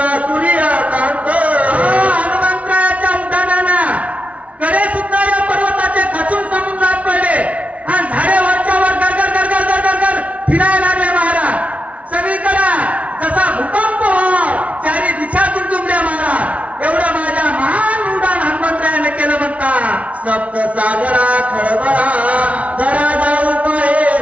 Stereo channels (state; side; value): late; left; 0.066 ms